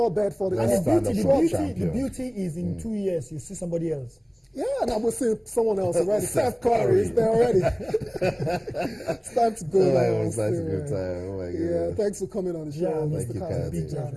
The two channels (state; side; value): identical; both; correlation 1.00